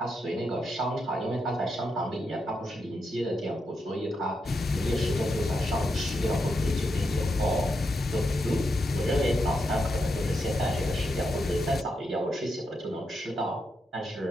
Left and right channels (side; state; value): both; normal; correlation 0.84